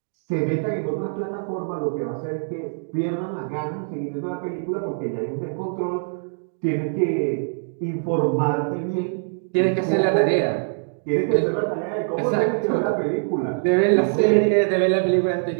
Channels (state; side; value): silent; left; digital silence